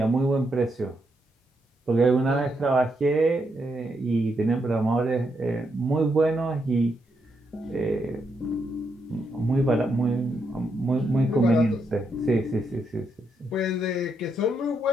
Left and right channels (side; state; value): both; normal; correlation 0.80